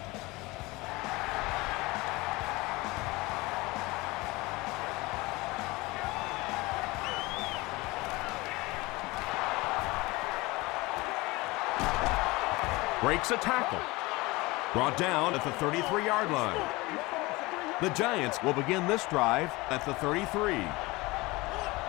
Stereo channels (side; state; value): right; quieter; 22.4 dB